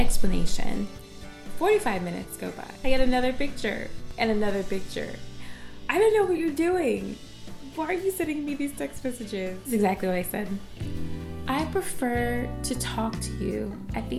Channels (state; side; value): identical; both; correlation 1.00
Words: 45 minutes go by. I get another picture and another picture. I don't know what you're doing. Why are you sending me these text messages? That's exactly what I said. I prefer to talk to you at